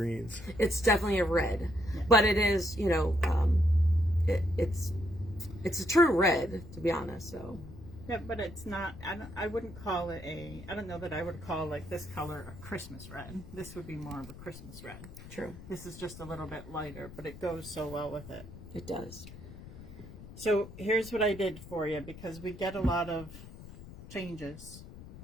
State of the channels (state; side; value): noise; left; rumble, 15 dB below the sound